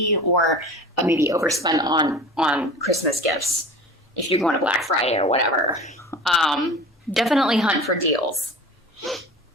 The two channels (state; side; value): normal; both; correlation 0.37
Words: or maybe overspend on Christmas gifts if you're going to Black Friday or whatever. Definitely hunt for deals.